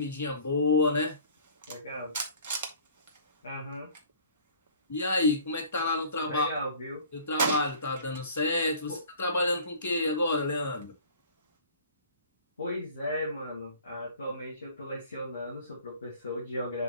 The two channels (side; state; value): both; inverted; correlation -0.48